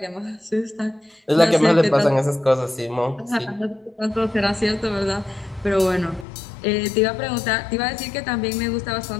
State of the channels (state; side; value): drops out; right; at 6.2 s